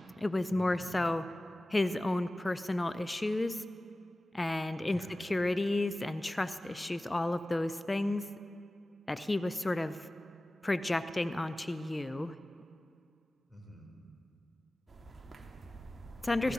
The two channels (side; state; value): both; normal; correlation 0.97